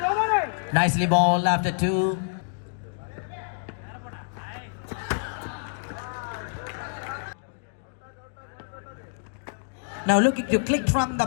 Nicely bowled after 2. Now looking to click from the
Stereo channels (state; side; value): silent; right; digital silence